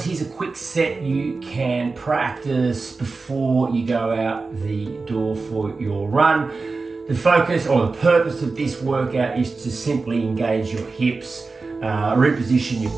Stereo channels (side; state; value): left; quieter; 4.0 dB